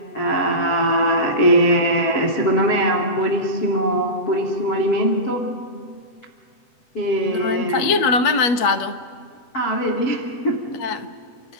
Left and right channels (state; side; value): late; right; 8.4 ms